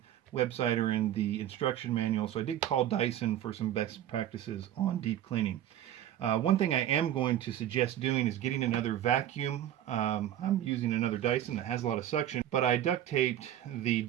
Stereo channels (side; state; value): left; quieter; 11.6 dB